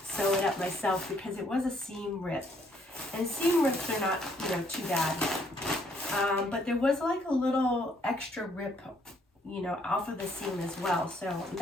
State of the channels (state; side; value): normal; both; correlation 0.68